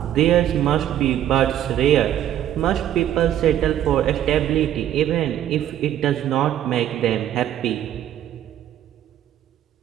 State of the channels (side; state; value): left; quieter; 11.4 dB